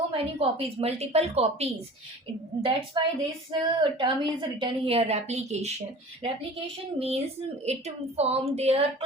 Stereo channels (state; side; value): normal; both; correlation 0.42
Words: many copies, multiple copies. That's why this term is written here, replication. Replication means it form their